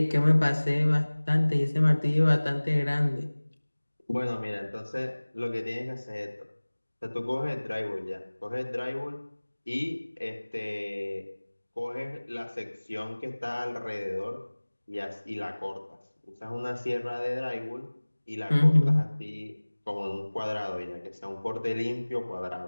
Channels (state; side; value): inverted; both; correlation -1.00